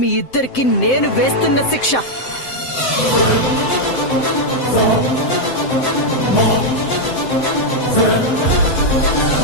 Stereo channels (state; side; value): late; right; 7.8 ms